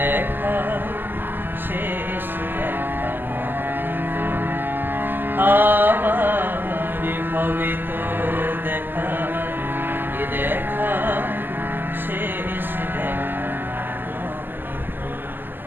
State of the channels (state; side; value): late; left; 0.092 ms